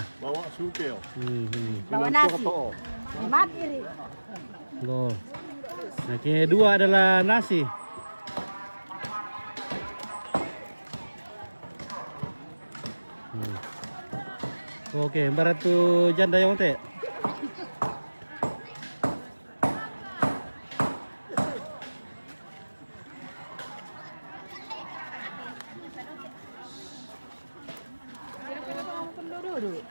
Bawa suke. Bawa nasi. Mati ri. Go. Nah, kedua adalah nasi. Oke, barat tu janda yang teh.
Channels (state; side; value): inverted; both; correlation -1.00